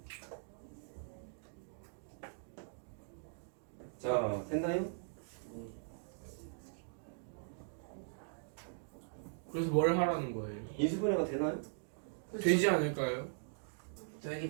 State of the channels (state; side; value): silent; left; digital silence